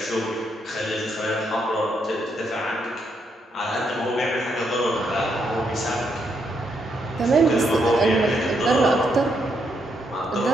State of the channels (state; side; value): normal; both; correlation 0.77